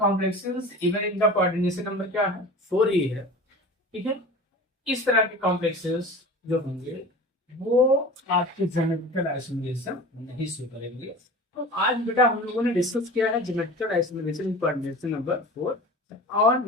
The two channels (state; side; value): normal; both; correlation 0.36